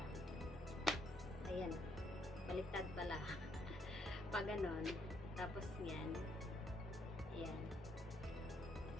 Ayan. Baliktad pala. Pag ganon. Tapos yan. Ayan.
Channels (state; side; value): normal; both; correlation 0.72